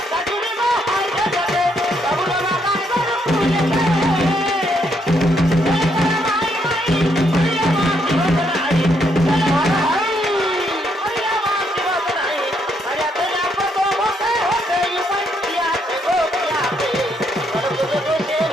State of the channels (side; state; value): both; normal; correlation 0.74